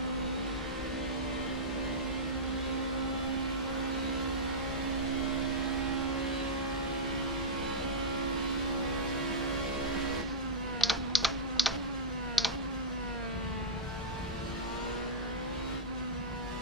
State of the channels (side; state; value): both; normal; correlation -0.08